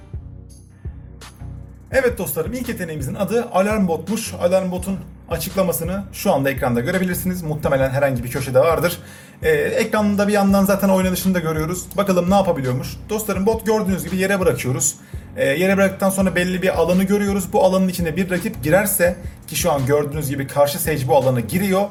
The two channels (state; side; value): identical; both; correlation 1.00